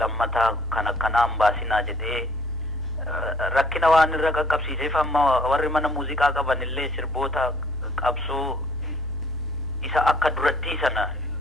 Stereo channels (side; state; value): both; normal; correlation 0.60